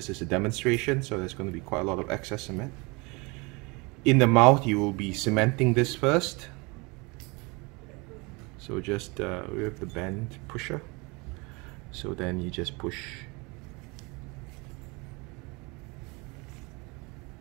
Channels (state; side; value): quieter; left; 27.2 dB